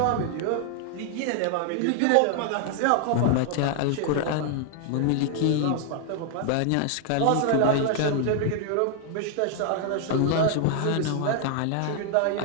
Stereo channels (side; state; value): both; different; correlation 0.00